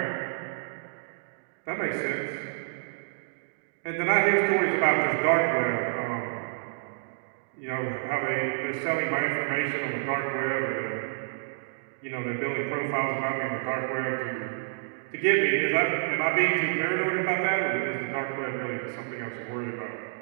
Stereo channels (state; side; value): silent; left; digital silence